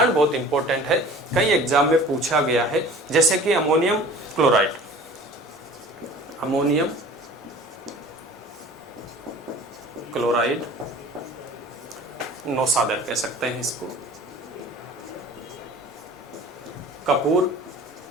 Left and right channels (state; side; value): normal; both; correlation 0.45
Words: बहुत इंपॉर्टेंट है, कई एग्जाम में पूछा गया है, जैसे कि अमोनियम क्लोराइड, अमोनियम क्लोराइड, नौसादर कह सकते हैं इसको, कपूर,